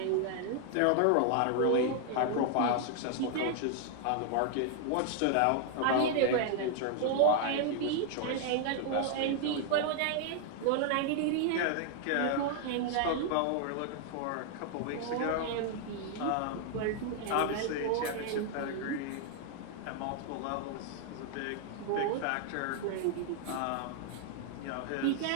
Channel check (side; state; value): both; different; correlation 0.00